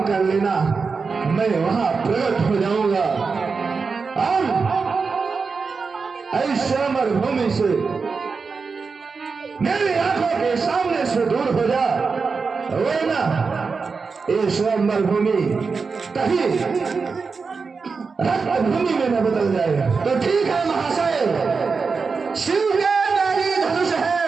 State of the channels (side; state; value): left; quieter; 4.8 dB